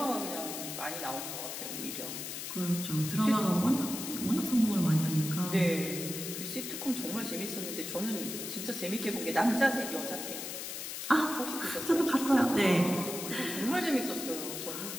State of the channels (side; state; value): left; noise; hiss, 6 dB below the sound